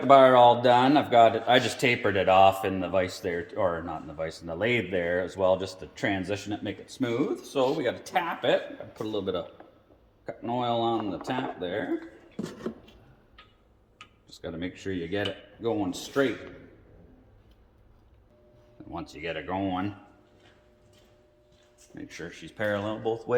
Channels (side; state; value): both; identical; correlation 1.00